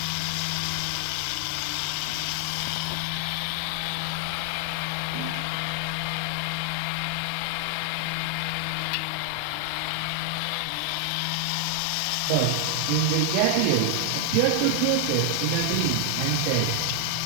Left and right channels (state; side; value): different; both; correlation 0.00